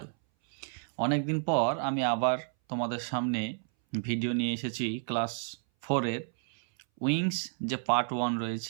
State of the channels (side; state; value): left; silent; 57 dB below the other